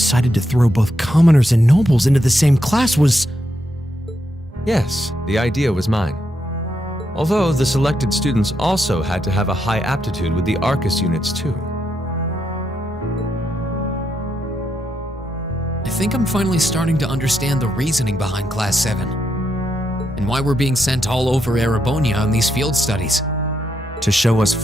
to throw both commoners and nobles into the same class was... Yes, the idea was mine. Although the selected students also had to have a high aptitude with the Arcus units too. I think I'm finally starting to understand the reasoning behind Class 7. And why we're being sent all over Erebonia on these field studies. To show us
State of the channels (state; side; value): normal; both; correlation 0.81